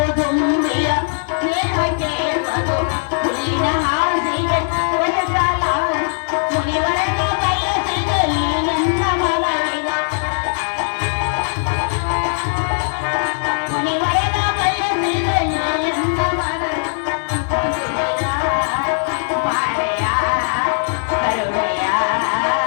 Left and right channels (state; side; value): silent; right; digital silence